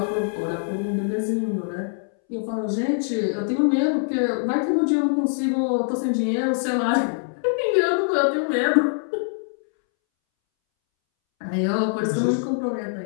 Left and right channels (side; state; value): right; silent; 63 dB below the other